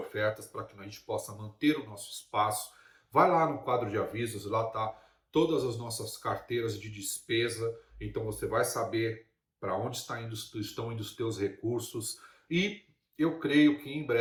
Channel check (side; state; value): both; identical; correlation 1.00